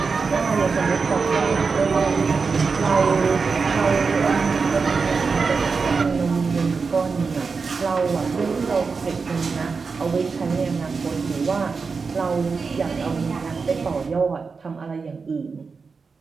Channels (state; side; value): quieter; left; 4.9 dB